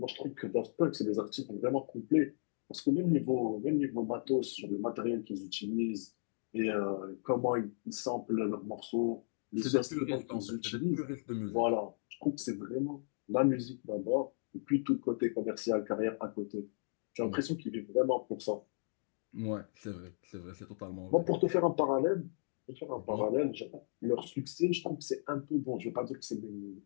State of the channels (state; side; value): silent; right; digital silence